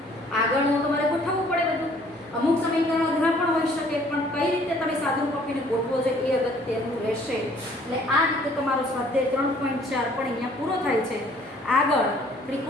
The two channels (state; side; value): normal; both; correlation 0.58